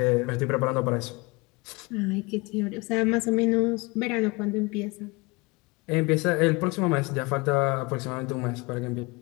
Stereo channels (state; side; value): quieter; right; 25.8 dB